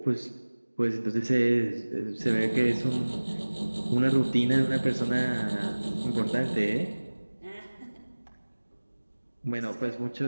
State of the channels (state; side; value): inverted; both; correlation -1.00